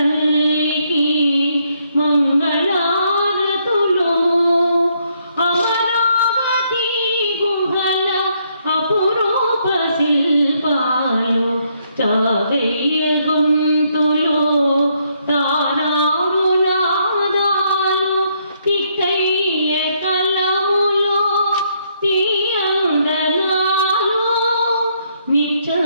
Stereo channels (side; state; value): both; inverted; correlation -0.72